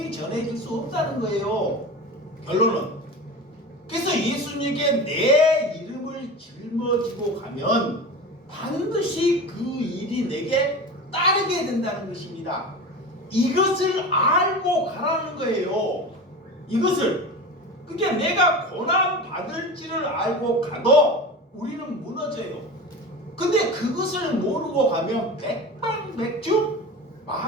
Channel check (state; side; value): normal; both; correlation 0.30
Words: 전해질 수 없다는 거예요. 결론은. 그래서 예수님께 내 이름을 짊어지고 가면 반드시 그 일이 내게 따르게 된다는 것입니다. 이것을 알고 가라는 거예요. 이것을. 그러니까 내가 고난 받을지를 알고 가도 우리는 무너져요. 근데 그것을 모르고 가면 백발백중